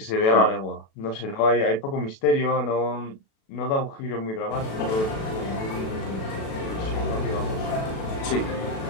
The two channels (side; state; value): right; late; 36 ms